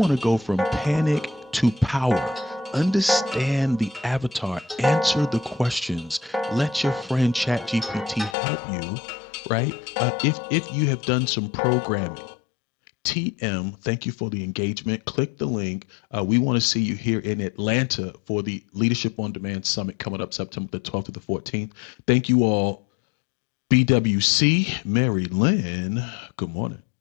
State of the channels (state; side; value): drops out; right; at 8.3 s